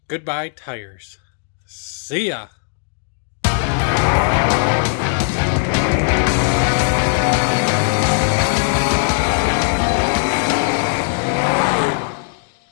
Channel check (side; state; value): right; silent; digital silence